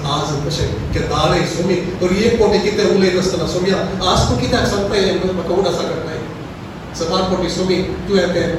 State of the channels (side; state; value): both; identical; correlation 1.00